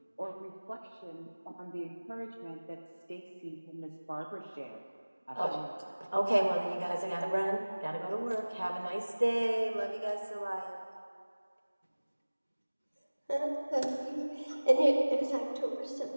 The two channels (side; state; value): both; inverted; correlation -1.00